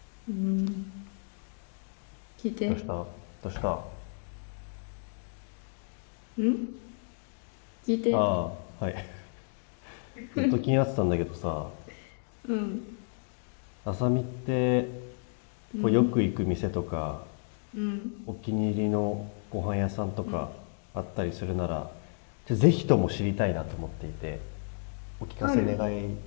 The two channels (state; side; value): silent; right; 57 dB below the other